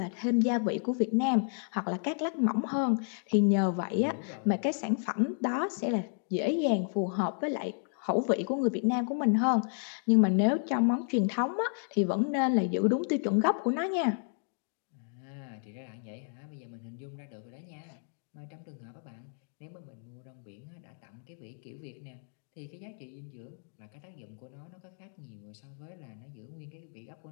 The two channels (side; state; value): right; silent; 56 dB below the other